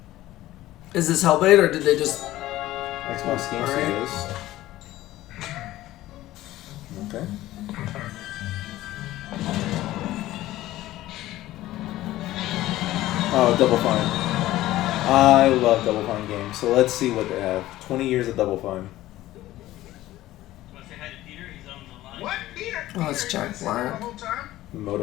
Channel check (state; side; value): quieter; right; 15.6 dB